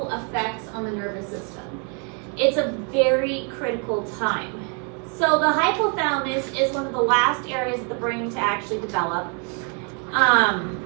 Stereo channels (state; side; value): quieter; left; 38.1 dB